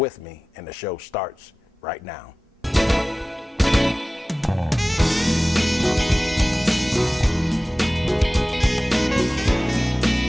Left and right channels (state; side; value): normal; both; correlation 0.97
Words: me, and the show starts right now.